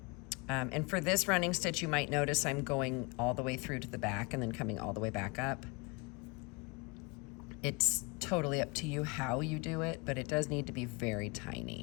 And for this running stitch, you might notice I'm going all the way through to the back and then coming all the way back up. It's totally up to you how you do it, but it does need to be very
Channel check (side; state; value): right; quieter; 28.4 dB